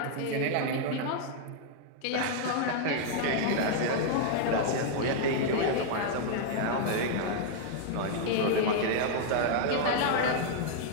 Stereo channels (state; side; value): different; both; correlation 0.00